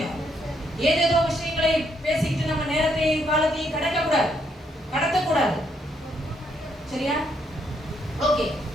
ஏதேதோ விஷயங்களை பேசிக்கிட்டு நம்ம நேரத்தையும் காலத்தையும் கடத்தக்கூடாது. சரியா? ஓகே.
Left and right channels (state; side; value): normal; both; correlation 0.74